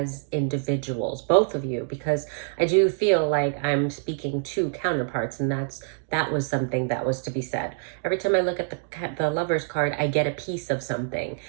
individuals, both of you, because I do feel like I'm speaking to counterparts, and that was something that was to be said. Every time I look at the Lovers card, I get a piece of something.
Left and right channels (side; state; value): left; silent; digital silence